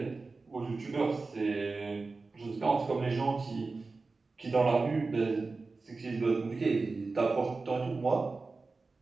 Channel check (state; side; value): quieter; left; 3.9 dB